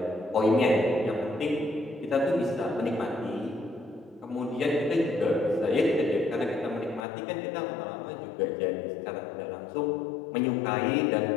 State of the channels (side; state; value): right; drops out; at 7.1 s